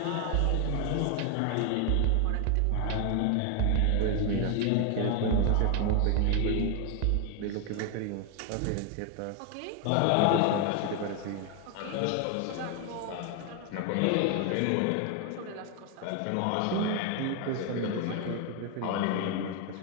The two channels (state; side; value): different; both; correlation 0.01